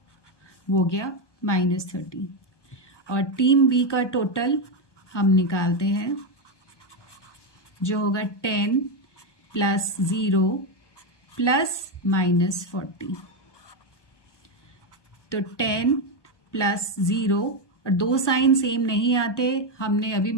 वो गया -30। और टीम बी का टोटल हम निकालते हैं, जो होगा 10 + 0 + -40। तो 10 + 0, और दो साइन सेम नहीं आते, हमने अभी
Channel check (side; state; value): right; late; 1.2 ms